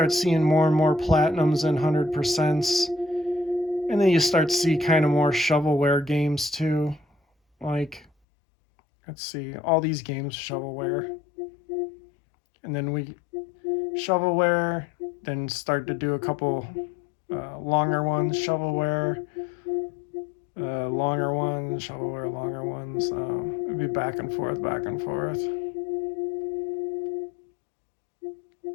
seeing more and more platinums and 100%s, and then you start to see kind of more shovelware games too. Like, let's see, all these games shovelware, and then we shovelware, then start to do a couple longer ones, shovelware, longer ones, shovelware, longer ones. It'd be back and forth, back and forth.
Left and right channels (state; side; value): drops out; right; at 8.1 s